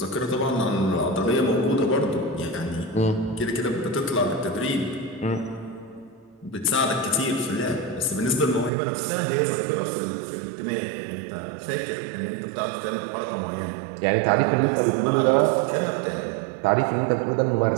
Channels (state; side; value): drops out; left; at 8.7 s